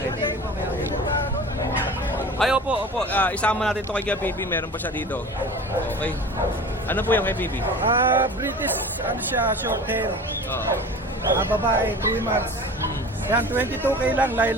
Ay, opo. Isama natin ito kay PB. Meron pa siya dito. Okay. Ano po yung kay PB? British, ano siya, short hair. Oo. Babae, 3 months. Yan, 22K lang,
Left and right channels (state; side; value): normal; both; correlation 0.38